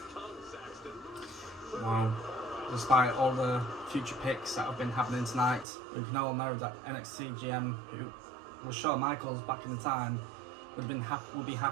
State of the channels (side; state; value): left; drops out; at 5.7 s